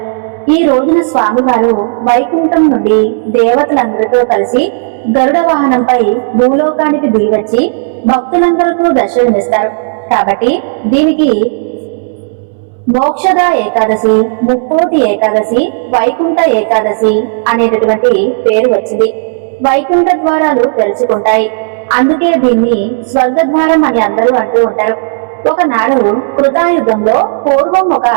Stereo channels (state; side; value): silent; left; digital silence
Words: ఈ రోజున స్వామివారు వైకుంఠం నుండి దేవతలందరితో కలిసి గరుడ వాహనంపై భూలోకానికి దిగివచ్చి భక్తులందరికీ దర్శనమిస్తారు. కాబట్టి దీనికి మోక్షద ఏకాదశి, ముక్కోటి ఏకాదశి, వైకుంఠ ఏకాదశి అనేటటువంటి పేరు వచ్చింది. వైకుంఠ ద్వారాలు తెరుచుకుంటాయి. అందుకే దీన్ని స్వర్గద్వారం అని అందరూ అంటూ ఉంటారు. ఒకనాడు కృతాయుగంలో పూర్వం ఒక